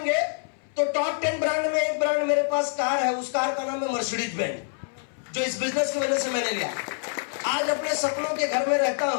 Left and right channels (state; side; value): silent; right; 59 dB below the other